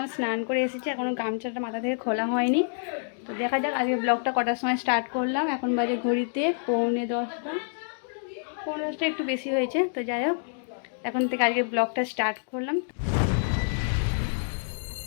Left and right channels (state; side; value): silent; right; digital silence